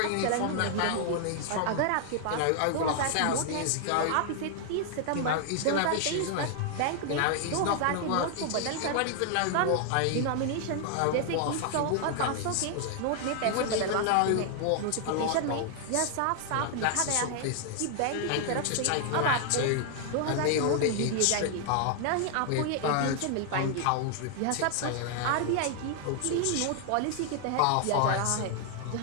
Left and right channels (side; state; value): both; different; correlation 0.00